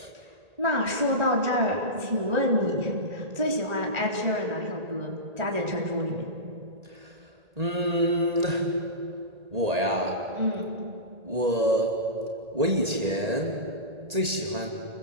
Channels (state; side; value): late; left; 1.8 ms